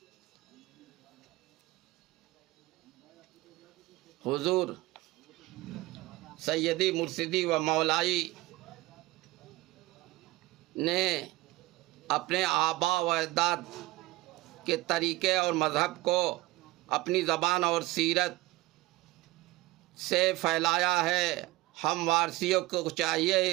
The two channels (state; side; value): quieter; left; 19.4 dB